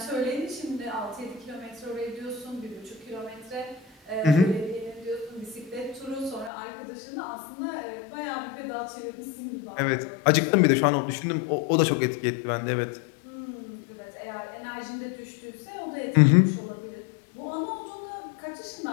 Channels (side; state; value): right; drops out; at 6.5 s